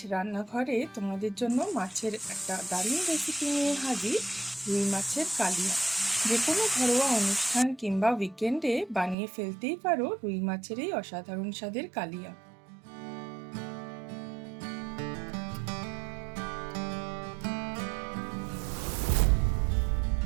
রান্নাঘরে তোমাদের জন্য মাছের একটা দারুণ রেসিপি নিয়ে হাজির, রুই মাছের কালিয়া। যে কোনো ঘরোয়া অনুষ্ঠান কিংবা উইকেন্ডে বানিয়ে ফেলতেই পারো রুই মাছের এই অসাধারণ স্বাদের কালিয়া।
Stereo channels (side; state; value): left; drops out; at 9.2 s